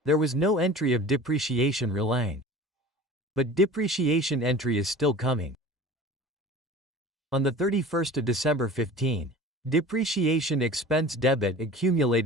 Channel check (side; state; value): both; normal; correlation 0.40